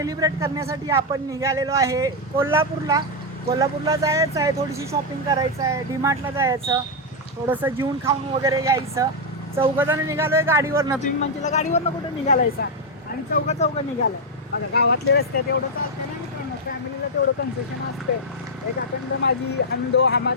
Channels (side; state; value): both; normal; correlation 0.01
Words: करण्यासाठी आपण निघालेलो आहे कोल्हापूरला जायचं आहे, थोडीशी शॉपिंग करायचं आहे, डीमार्टला जायचं, थोडंसं जेवून खाऊन वगैरे यायचं. चौघजण निघालोय गाडीवरनं. तुम्ही म्हणजे गाडीवरनं कुठं निघालायचा आणि चौघं निघालं. आता गावातले रस्त्यात एवढं चालतं ना मित्रांनो, फॅमिलीला तेवढं कन्सेशन असते. एक अखंड माझी हम दो